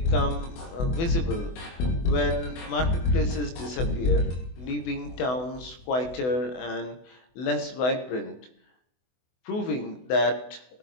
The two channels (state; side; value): late; right; 24 ms